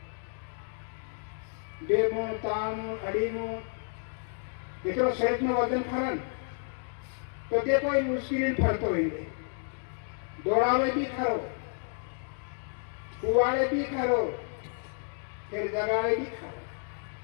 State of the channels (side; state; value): right; silent; 56 dB below the other